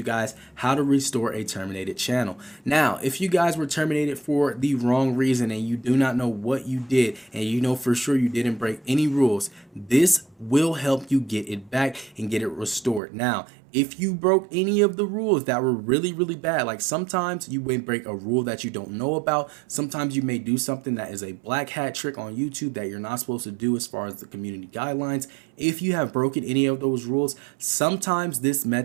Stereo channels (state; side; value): drops out; left; at 13.0 s